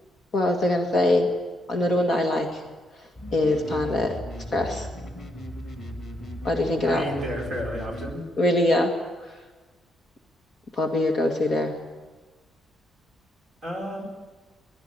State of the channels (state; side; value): normal; both; correlation 0.77